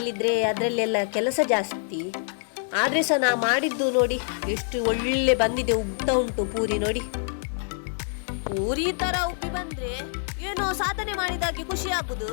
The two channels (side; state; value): right; silent; 61 dB below the other